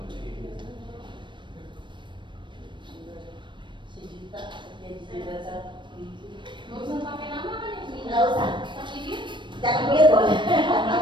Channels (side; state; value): left; late; 0.23 ms